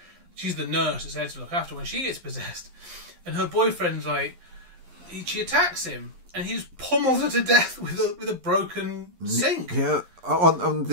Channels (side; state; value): left; late; 11 ms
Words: She's the nurse that's there to look after when she gets possessed, and her boyfriend's like, she attacks him, and he just pummels her to death with a broken sink. Yeah, on